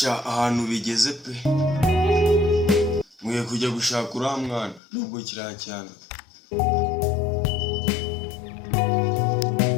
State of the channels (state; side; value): drops out; right; at 4.8 s